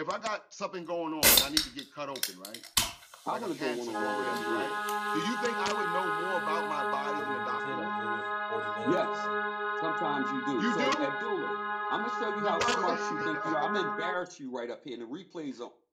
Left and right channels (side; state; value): both; identical; correlation 1.00